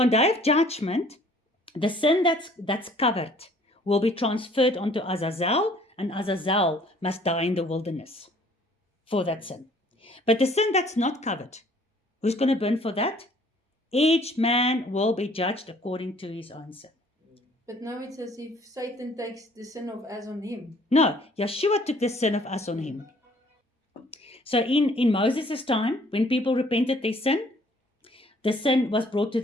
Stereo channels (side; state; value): both; normal; correlation 0.57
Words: on day of judgment, the sin that's covered will be transferred onto Azazel, and Azazel must die in the wilderness for that sin. But the sin that's not covered, who's going to burn for that? Each man will be judged according to his own sin. But now it's as if Satan takes the sin of us on him. No, Yeshua took the sin of us on him. So in Moses' time, when people repented their sin, the sin was brought to